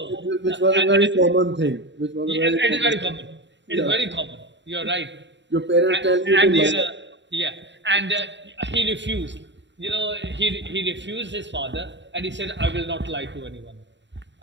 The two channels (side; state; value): left; late; 0.52 ms